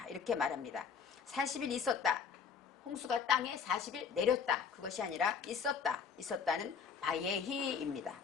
이렇게 말합니다. 40일 있었다. 홍수가 땅에 40일 내렸다. 그것이 아니라 있었다. 있었다는 바예히입니다.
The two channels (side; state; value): right; quieter; 6.4 dB